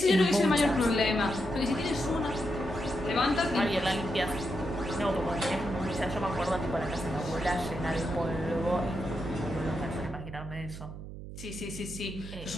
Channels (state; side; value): noise; right; hum, 11 dB below the sound